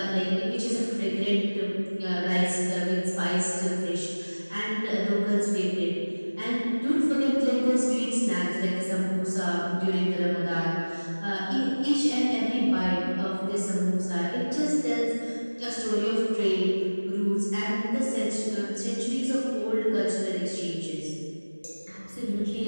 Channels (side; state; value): both; inverted; correlation -1.00